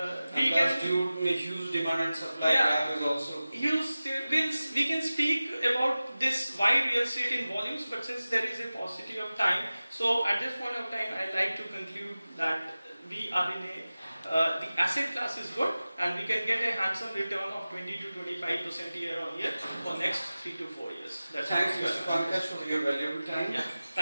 We can due to huge demand and supply gap is also. We can speak about this wide real estate in volumes, but since there is a paucity of time, so at this point of time, I like to conclude that we are in the asset class is good, and we can get a handsome return of 20 to 25% year on year for next 3 to 4 years. Thanks, Mr. Pankaj, for your valuable time. Yeah,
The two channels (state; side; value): inverted; both; correlation -0.96